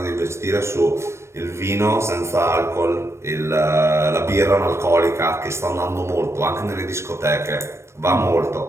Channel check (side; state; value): left; late; 0.13 ms